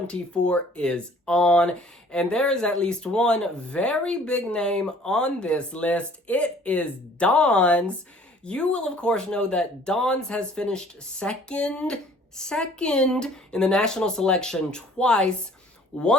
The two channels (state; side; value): normal; both; correlation 0.54